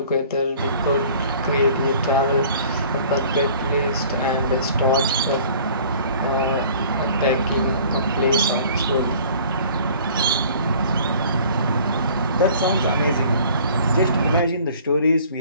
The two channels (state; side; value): inverted; both; correlation -0.50